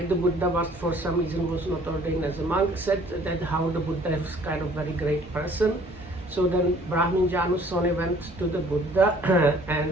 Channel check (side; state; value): both; normal; correlation 0.56